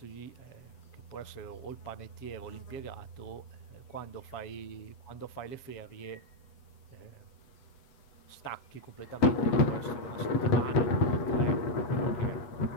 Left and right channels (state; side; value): late; right; 7.9 ms